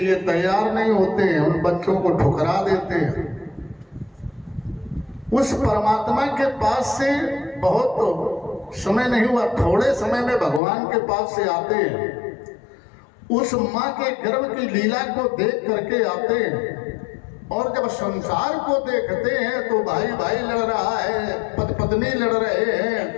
तैयार नहीं होते हैं, उन बच्चों को ठुकरा देते हैं। उस परमात्मा के पास से बहुत समय नहीं हुआ, थोड़े समय में भगवान के पास से आते हैं, उस माँ के गर्भ की लीला को देख करके आते हैं, और जब संसार को देखते हैं तो भाई भाई लड़ रहा है, पत्नी लड़ रहे हैं,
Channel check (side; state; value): right; drops out; at 10.6 s